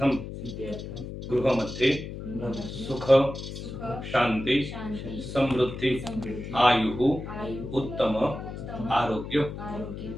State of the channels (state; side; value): noise; left; hum, 9 dB below the sound